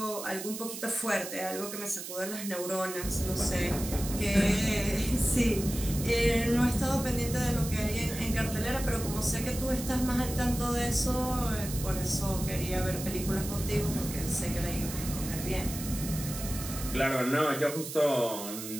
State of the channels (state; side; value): noise; right; hiss, 9 dB below the sound